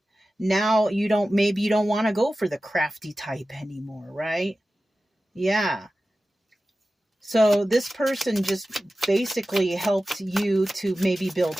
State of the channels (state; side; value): normal; both; correlation 0.95